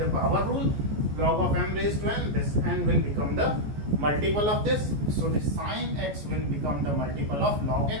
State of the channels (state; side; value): late; left; 14 ms